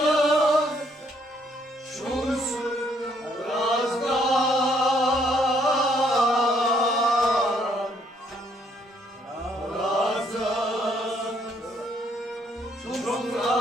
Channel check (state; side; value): normal; both; correlation 0.68